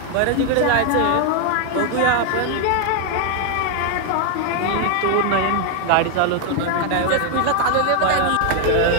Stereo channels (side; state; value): both; different; correlation 0.00